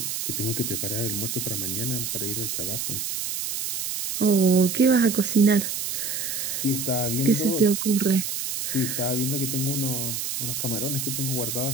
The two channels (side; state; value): right; noise; hiss, 3 dB below the sound